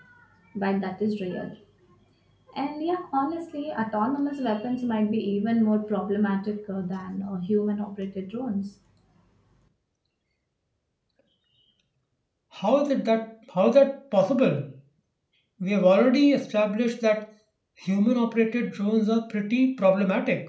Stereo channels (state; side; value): identical; both; correlation 1.00